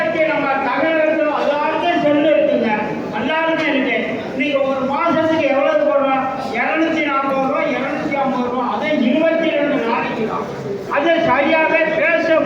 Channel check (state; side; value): identical; both; correlation 1.00